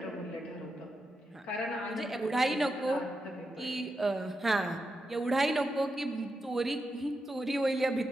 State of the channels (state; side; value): normal; both; correlation 0.87